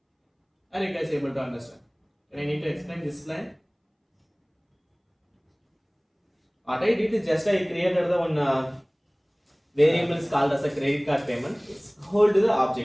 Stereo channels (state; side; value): identical; both; correlation 1.00